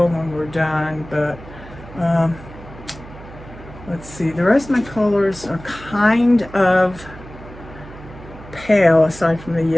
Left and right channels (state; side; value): noise; right; hum, 17 dB below the sound